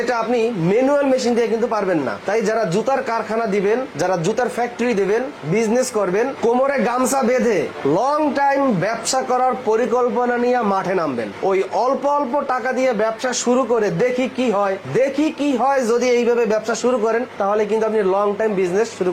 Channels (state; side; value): identical; both; correlation 1.00